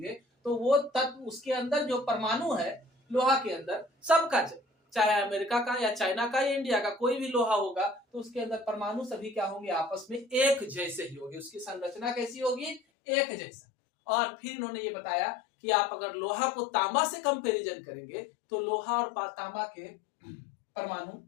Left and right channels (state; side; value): drops out; right; at 12.8 s